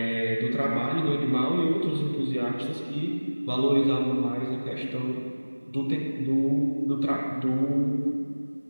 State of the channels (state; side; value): inverted; both; correlation -1.00